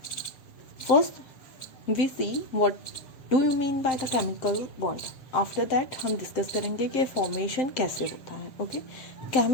First, we see what do you mean by the chemical bond. After that हम discuss करेंगे कि formation कैसे होता है. Okay,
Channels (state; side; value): late; right; 7.3 ms